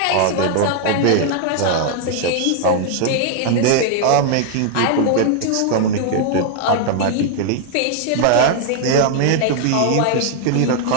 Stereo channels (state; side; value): different; both; correlation -0.01